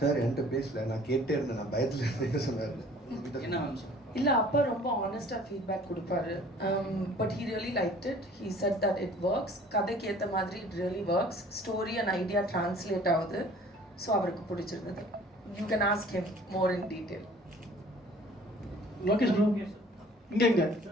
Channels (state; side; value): normal; both; correlation 0.51